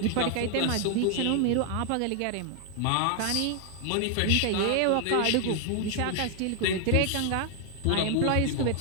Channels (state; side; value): different; both; correlation 0.00